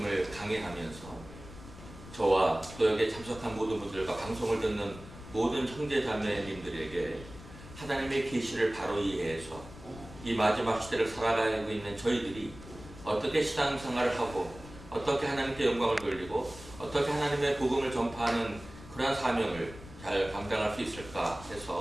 강의하면서 저와 또 여기에 참석한 모든 분들과 방송을 듣는 모든 형제자매님들에게 하나님의 계시를 바로 이해해서 이 마지막 시대를 살아가고 있는 저희들이 어떻게 신앙생활을 하고 어떻게 하나님께 영광을 돌리고 어떻게 하나님의 복음을 전파하는 그러한 사명을 잘 감당할 수 있을까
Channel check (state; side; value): noise; left; rumble, 16 dB below the sound